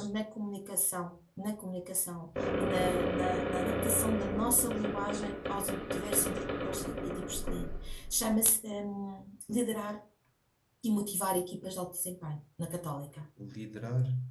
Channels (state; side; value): identical; both; correlation 1.00